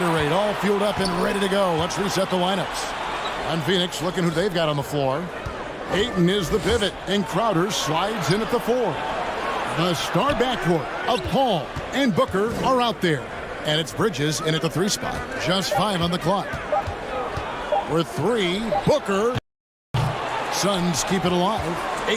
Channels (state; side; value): identical; both; correlation 1.00